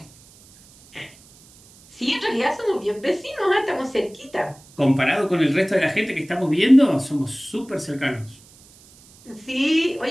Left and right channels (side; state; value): right; noise; hiss, 25 dB below the sound